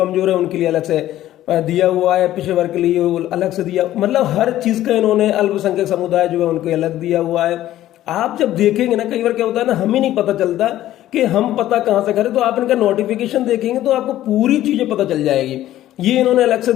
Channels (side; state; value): right; quieter; 13.6 dB